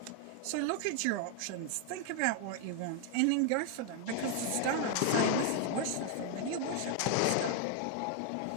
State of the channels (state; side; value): different; both; correlation 0.00